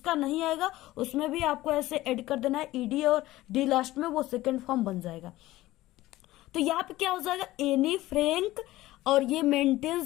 नहीं आएगा उसमें भी आपको ऐसे ऐड कर देना है, ईडी और डी लास्ट में, वो सेकेंड फॉर्म बन जाएगा। तो यहाँ पे क्या हो जाएगा, एनी फ्रैंक, और ये मेंटेन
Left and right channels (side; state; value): right; quieter; 16.8 dB